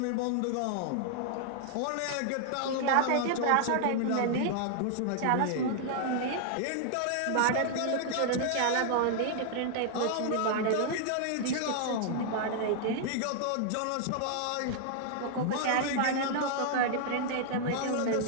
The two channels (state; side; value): different; both; correlation -0.01